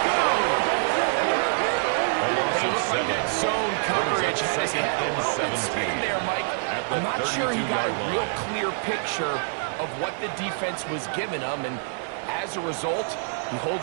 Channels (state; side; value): silent; left; 61 dB below the other